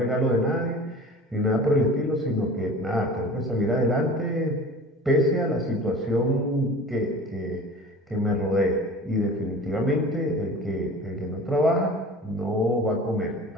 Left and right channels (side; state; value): both; normal; correlation 0.40